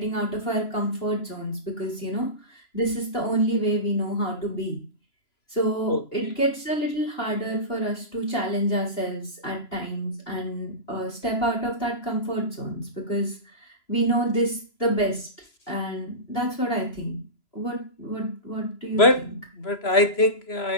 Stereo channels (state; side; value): late; right; 2.9 ms